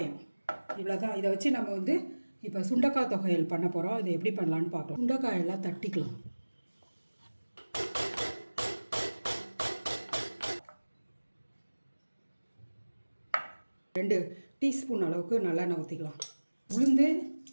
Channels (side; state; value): both; inverted; correlation -1.00